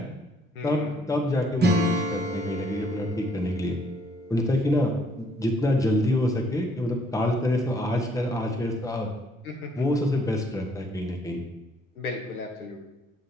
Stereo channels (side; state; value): both; normal; correlation 0.66